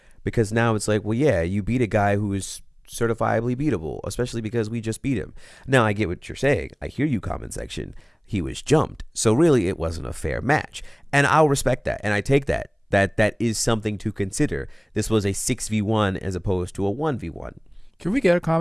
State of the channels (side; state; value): both; identical; correlation 1.00